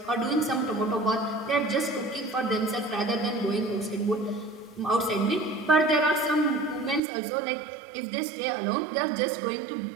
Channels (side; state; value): left; drops out; at 7.0 s